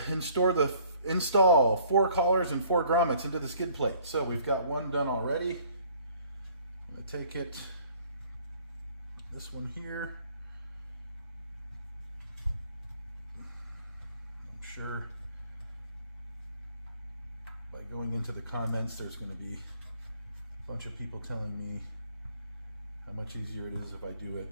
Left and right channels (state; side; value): inverted; both; correlation -0.58